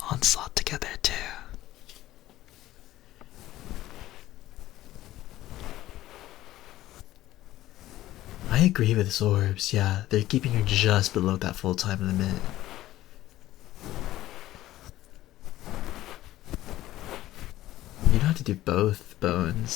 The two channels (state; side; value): quieter; right; 15.1 dB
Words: Onslaught together too. I agree with Sorbs. Yeah, they're keeping you just below that full time limit. You don't have to do both,